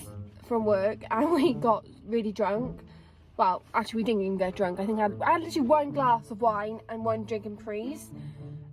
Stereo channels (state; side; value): identical; both; correlation 1.00